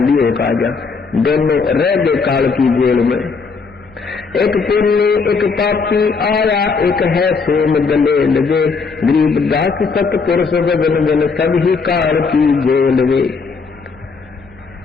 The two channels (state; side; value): quieter; right; 4.8 dB